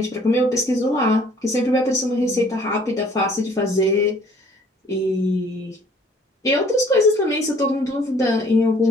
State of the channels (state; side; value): normal; both; correlation 0.57